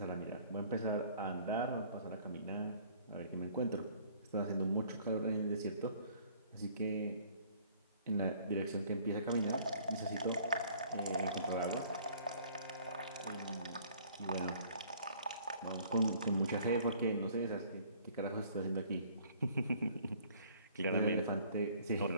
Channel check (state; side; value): inverted; both; correlation -0.56